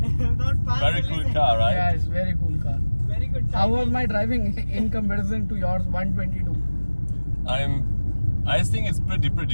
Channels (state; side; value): inverted; both; correlation -1.00